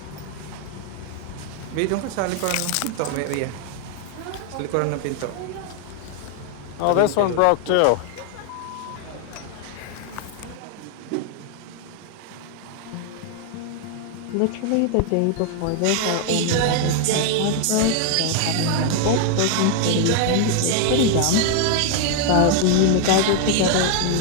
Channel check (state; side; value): different; both; correlation 0.00